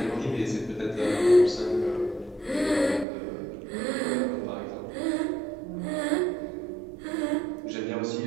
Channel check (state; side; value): drops out; left; at 3.1 s